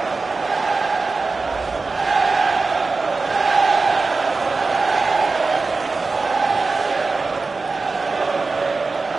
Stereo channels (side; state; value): left; quieter; 4.0 dB